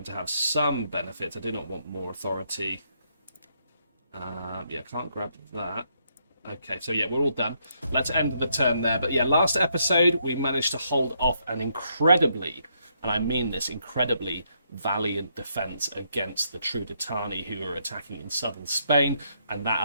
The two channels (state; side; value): inverted; both; correlation -0.75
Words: to have some benefits. I do not want more authority. Yeah, can't grab that. Okay, so yeah, we're all done. Let's end the turn there. But yeah, last episode we managed to hold off an incredibly, and I mean this, incredibly valiant defense against the Trudetani who were attacking in southern Spain, and